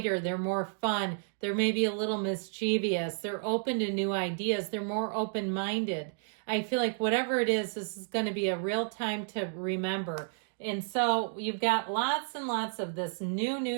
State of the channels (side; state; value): left; silent; 57 dB below the other